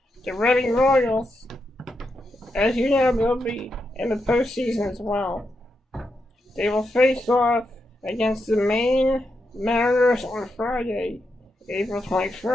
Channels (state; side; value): normal; both; correlation 0.84